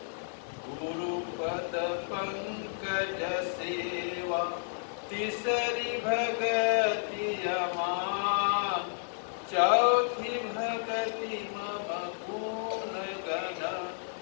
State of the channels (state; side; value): silent; right; digital silence